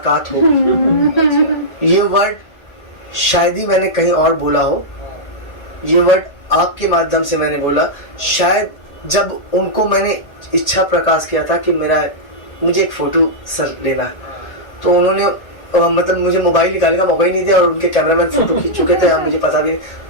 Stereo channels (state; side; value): late; right; 1.8 ms